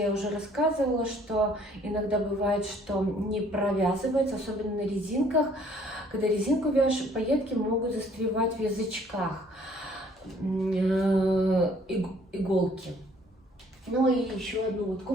уже рассказывала, что иногда бывает, что не провязывается, особенно на резинках, когда резинку вяжешь, пайетки могут застревать в язычках иголки. Ну и еще одну вот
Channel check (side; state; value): both; normal; correlation 0.59